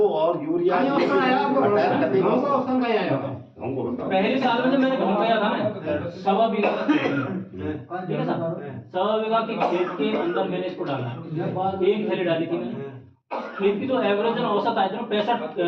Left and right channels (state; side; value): identical; both; correlation 1.00